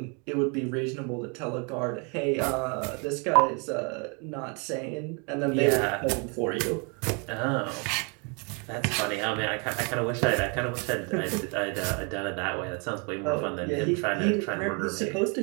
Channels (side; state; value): left; quieter; 34.7 dB